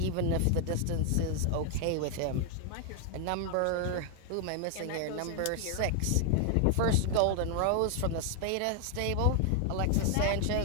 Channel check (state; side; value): different; both; correlation 0.00